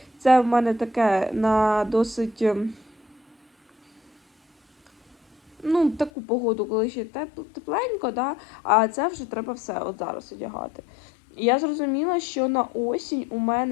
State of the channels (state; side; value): drops out; right; at 6.1 s